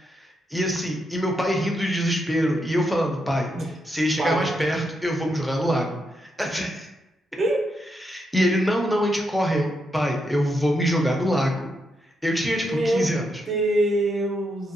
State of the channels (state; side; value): normal; both; correlation 0.82